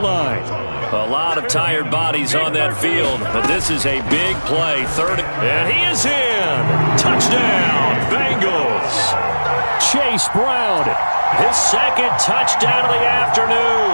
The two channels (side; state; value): both; inverted; correlation -1.00